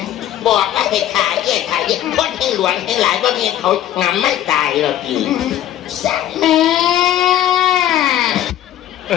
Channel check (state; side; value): quieter; right; 12.1 dB